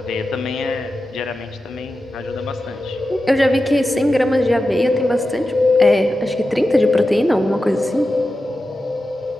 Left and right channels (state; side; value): normal; both; correlation 0.92